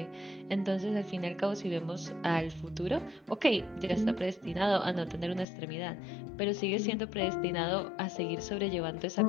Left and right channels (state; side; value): drops out; right; at 5.5 s